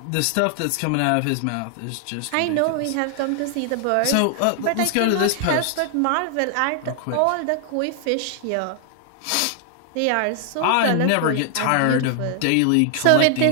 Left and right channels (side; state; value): both; different; correlation 0.00